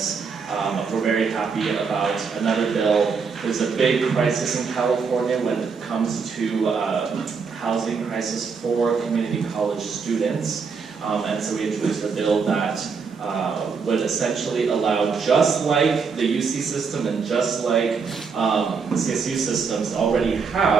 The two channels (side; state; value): left; quieter; 5.4 dB